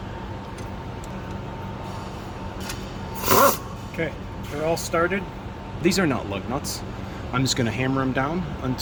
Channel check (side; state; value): both; identical; correlation 1.00